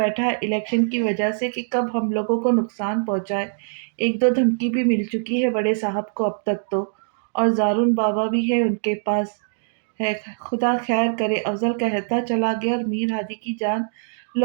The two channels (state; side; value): silent; left; digital silence